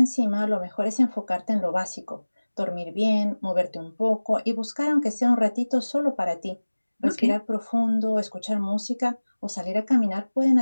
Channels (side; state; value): both; inverted; correlation -1.00